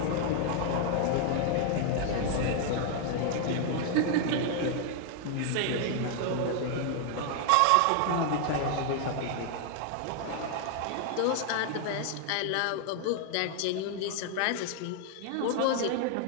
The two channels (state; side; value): different; both; correlation 0.00